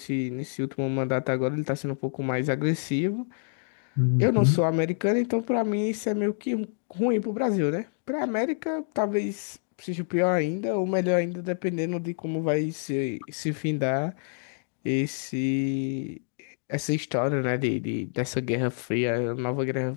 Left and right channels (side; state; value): right; silent; digital silence